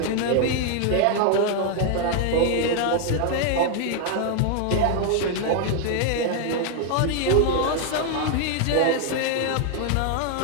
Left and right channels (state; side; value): different; both; correlation 0.00